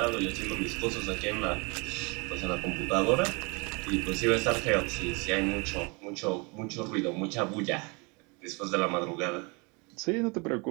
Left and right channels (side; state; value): left; quieter; 30.0 dB